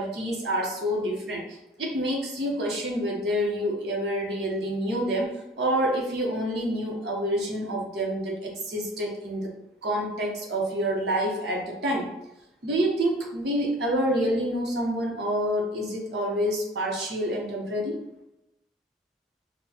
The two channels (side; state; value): both; normal; correlation 0.42